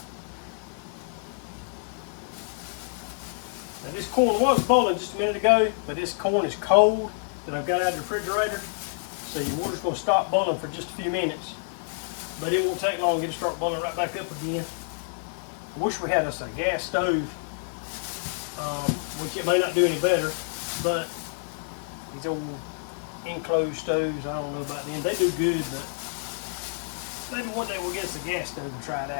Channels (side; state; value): right; silent; digital silence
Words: Now this corn was boiling just a minute ago, but this corn is cold that I've got out of the refrigerator. So your water's going to stop boiling for just a few minutes. But it won't take long to get it start boiling right back up again. I wish we had us a gas stove, which it may not do any better, but these old enclosed stoves, I don't know about them. They do good, but maybe one day we'll get us a gas stove and try it